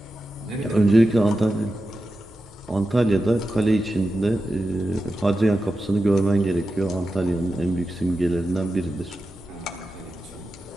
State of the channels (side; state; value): both; normal; correlation 0.91